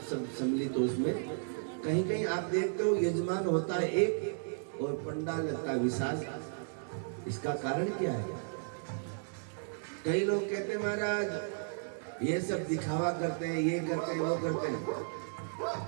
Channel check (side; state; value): left; silent; digital silence